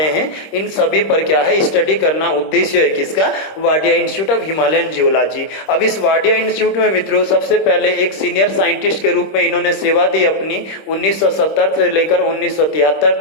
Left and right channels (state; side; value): late; right; 26 ms